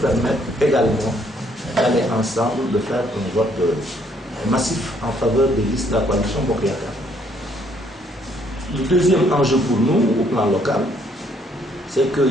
également d'aller ensemble, de faire un vote massif en faveur des listes de la coalition Bokk Yakaar. Le deuxième enjeu pour nous, au plan local, c'est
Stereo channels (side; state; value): both; normal; correlation 0.67